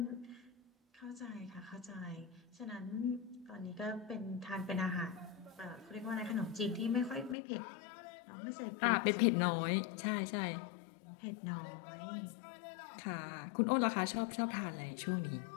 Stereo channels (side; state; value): right; drops out; at 7.4 s